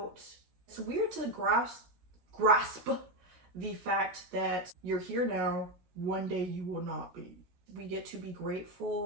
It's weird to grasp the fact that you're here now, one day you will not be. We get to be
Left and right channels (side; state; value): left; late; 17 ms